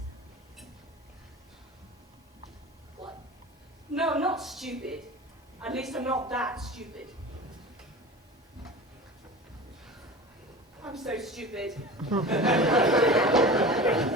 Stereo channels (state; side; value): normal; both; correlation 0.34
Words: What? No, not stupid. At least I'm not that stupid. I'm so stupid. Got